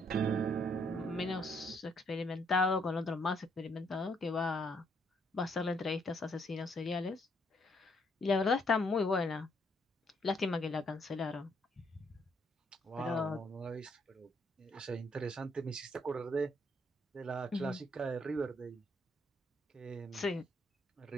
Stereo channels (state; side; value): normal; both; correlation 0.71